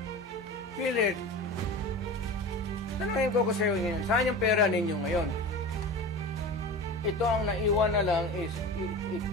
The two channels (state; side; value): normal; both; correlation 0.31